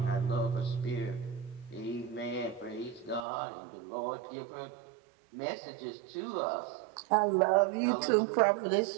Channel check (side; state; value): left; drops out; at 3.2 s